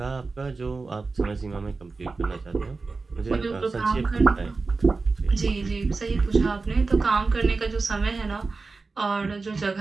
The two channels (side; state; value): left; quieter; 4.0 dB